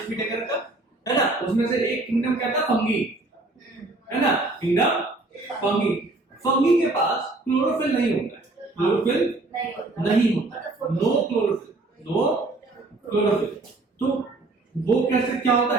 टेकर का, है ना। उसमें से एक किंगडम क्या था, फंगी, है ना, किंगडम फंगी। फंगी के पास क्लोरोफिल नहीं होता है, क्लोरोफिल नहीं होता, नो क्लोरोफिल, नो क्लोरोफिल। तो वो कैसे क्या होता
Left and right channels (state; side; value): quieter; left; 3.0 dB